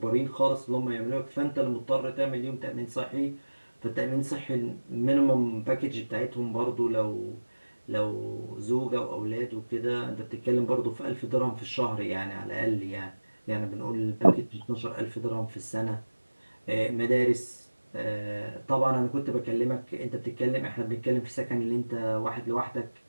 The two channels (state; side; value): inverted; both; correlation -1.00